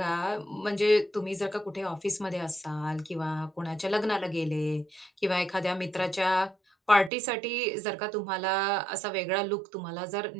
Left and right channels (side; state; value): left; drops out; at 7.1 s